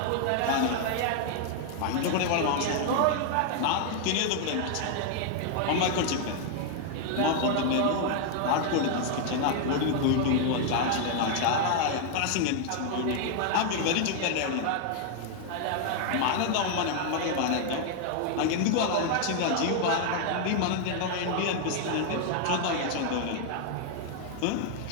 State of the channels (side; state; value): both; different; correlation 0.00